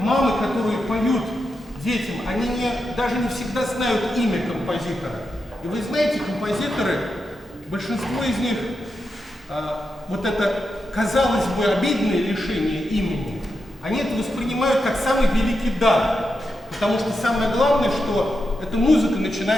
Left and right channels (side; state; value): both; normal; correlation 0.87